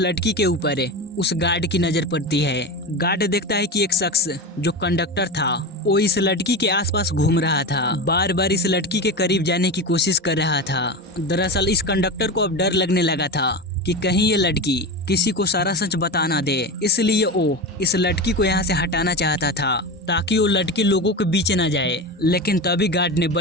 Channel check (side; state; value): both; normal; correlation 0.24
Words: के ऊपर उस गार्ड की नजर पड़ती है। गार्ड देखता है कि एक शख्स जो कंडक्टर था वो इस लड़की के आसपास घूम रहा था, बार बार इस लड़की के करीब जाने की कोशिश कर रहा था। दरअसल इस कंडक्टर को अब डर लगने लगा था कि कहीं ये लड़की किसी को सारा सच बता ना दे, इसलिए वो इस लड़की को यहाँ से हटाना चाहता था ताकि वो लड़की लोगों के बीच न जाए। लेकिन तभी गार्ड ने